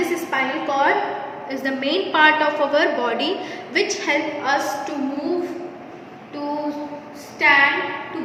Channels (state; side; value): identical; both; correlation 1.00